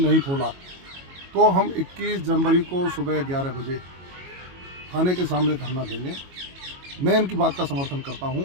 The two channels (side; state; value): left; late; 22 ms